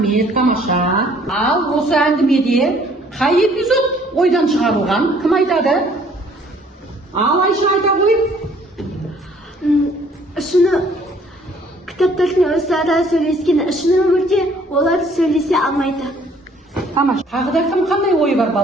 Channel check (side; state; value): both; normal; correlation 0.59